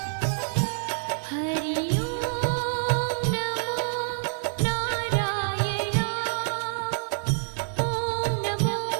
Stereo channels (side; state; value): left; silent; digital silence